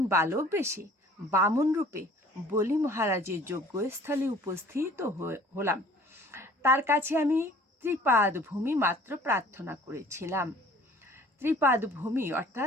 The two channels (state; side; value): normal; both; correlation 0.51